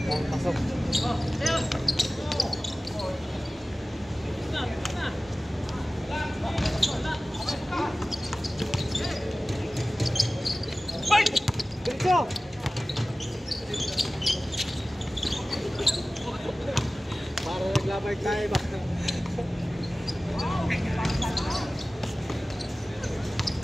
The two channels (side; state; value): both; normal; correlation 0.97